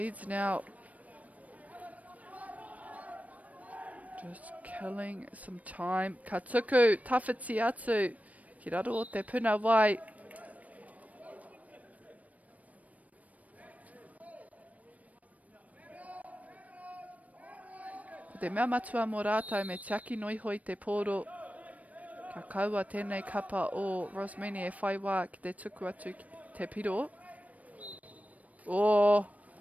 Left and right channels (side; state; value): left; late; 0.070 ms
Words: now just killing some time. Ka tuku, tawhiti atu. Ki raro o te puna wai. Ko te mea matua mō rātou me tiaki noi hoi te poro. Ka kaua tēnei kapa o Rosmini e whai wā ki te tuku atu ki te piro. Oh,